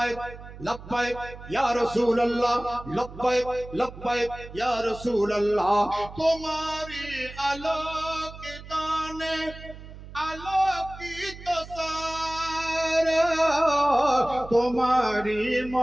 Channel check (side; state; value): right; noise; hum, 15 dB below the sound